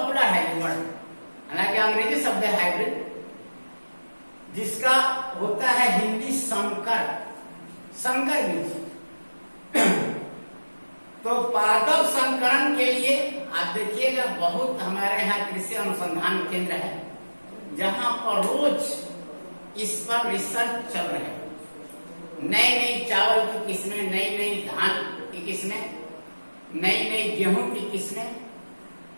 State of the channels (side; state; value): both; inverted; correlation -1.00